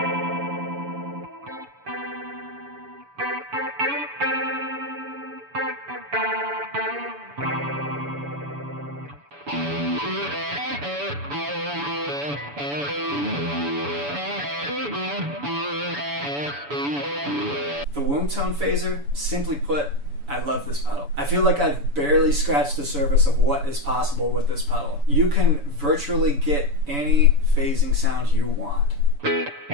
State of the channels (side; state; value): left; late; 7.0 ms